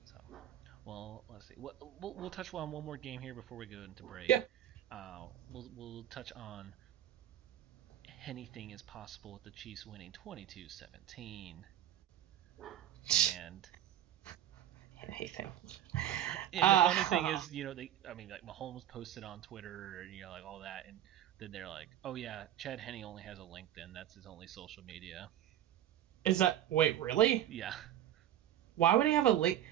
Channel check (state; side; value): quieter; left; 11.6 dB